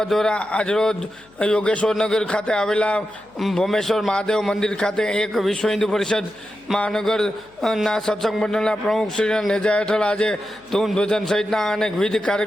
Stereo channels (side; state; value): left; noise; hum, 30 dB below the sound